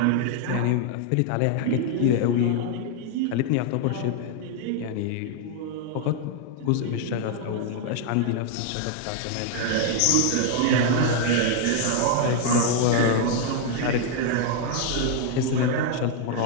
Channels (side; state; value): both; different; correlation 0.00